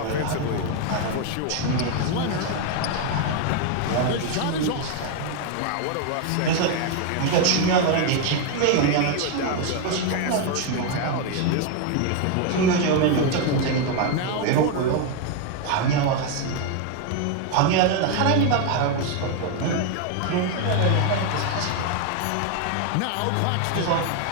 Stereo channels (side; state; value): both; different; correlation 0.01